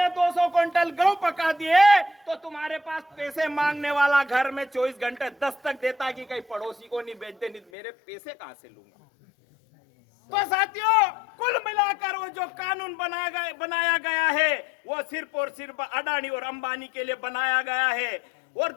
200 क्विंटल गेहूं पका दिए तो तुम्हारे पास पैसे मांगने वाला घर में 24 घंटे दस्तक देता कि कहीं पड़ोसी को नहीं बेच दे, नहीं मेरे पैसे कहां से लूंगा? तो साथियों, कुल मिलाकर वो जो कानून बनाया गया है वो सिर्फ और सिर्फ अडानी और अंबानी के लिए बनाया गया है। और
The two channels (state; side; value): drops out; right; at 7.6 s